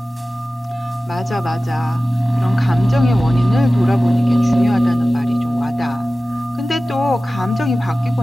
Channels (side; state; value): both; normal; correlation 0.96